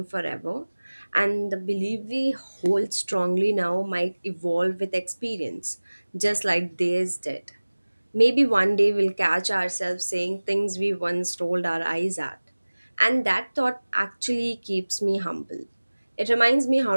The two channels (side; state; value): both; inverted; correlation -1.00